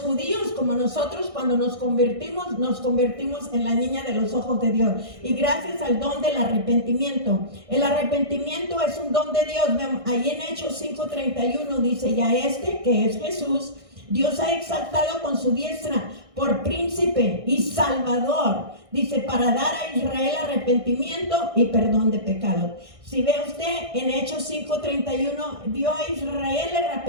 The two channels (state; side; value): late; left; 1.6 ms